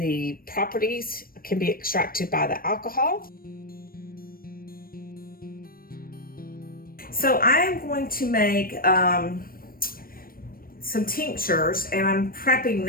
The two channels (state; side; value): late; right; 0.42 ms